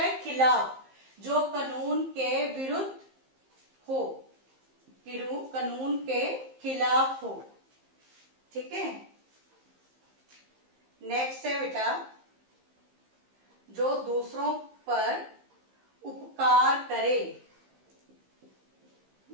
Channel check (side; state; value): left; late; 15 ms